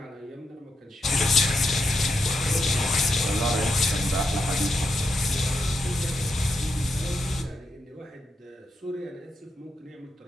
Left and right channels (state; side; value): normal; both; correlation 0.83